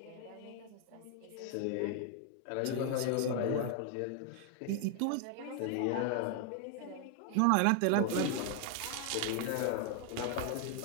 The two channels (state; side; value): different; both; correlation 0.00